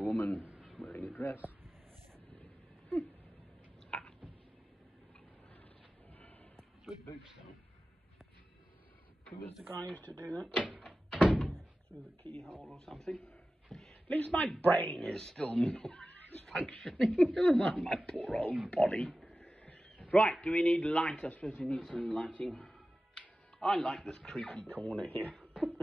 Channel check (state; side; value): normal; both; correlation 0.95